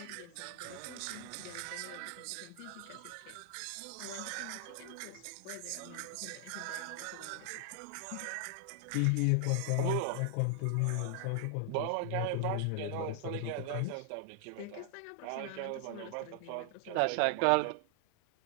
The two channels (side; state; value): both; different; correlation 0.00